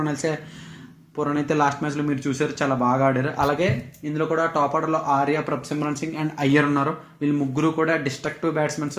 అయితే లాస్ట్ మ్యాచ్లో మీరు చూసారు, చాలా బాగా ఆడారు. అలాగే ఇందులో కూడా టాప్ ఆర్డర్లో ఆర్య, ప్రభ్సిమ్రాన్ సింగ్ అండ్ అయ్యర్ ఉన్నారు. వీళ్ళు ముగ్గురు కూడా డిస్ట్రక్టివ్ బ్యాట్స్మెన్స్.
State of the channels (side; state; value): both; identical; correlation 1.00